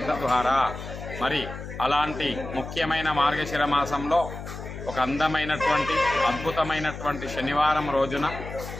ద్వారా. మరి అలాంటి ముఖ్యమైన మార్గశిర మాసంలో ఒక అందమైనటువంటి అద్భుతమైనటువంటి శనివారం రోజున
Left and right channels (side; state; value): left; noise; hum, 10 dB below the sound